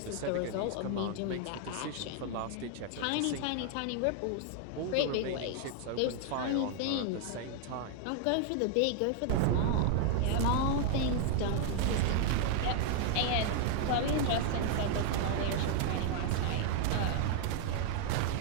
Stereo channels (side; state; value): both; different; correlation 0.00